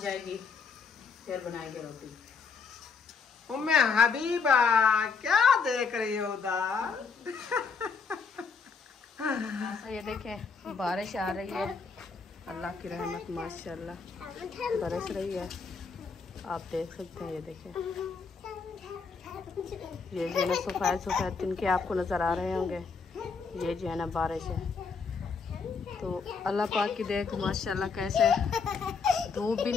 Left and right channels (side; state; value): right; quieter; 5.2 dB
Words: जाएगी, फिर बनाएंगे रोटी। उम्मे हबीबा क्या देख रही हो उधर? ये देखें बारिश आ रही है, अल्लाह की रहमत माशाल्लाह बरस रही है, आप देख सकते हैं। ये देखें, ये जो है ना सफ़ेद सफ़ेद तिनके आपको नज़र आ रहे होंगे, ये जो है ना बारिश है। तो अल्लाह पाक की देख माशाल्लाह कैसे धूप भी